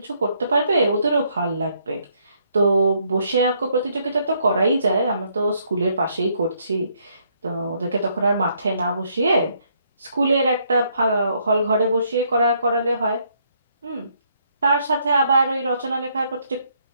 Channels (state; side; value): inverted; both; correlation -0.71